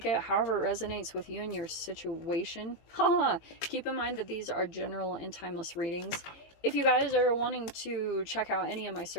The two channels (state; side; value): late; right; 18 ms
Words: it however it resonates with you and your situation. Keep in mind that these are general and timeless readings. If you guys are wanting to check out any of my